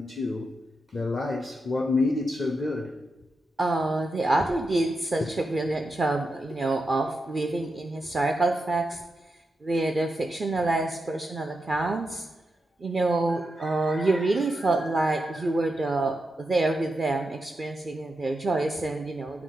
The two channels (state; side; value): normal; both; correlation 0.87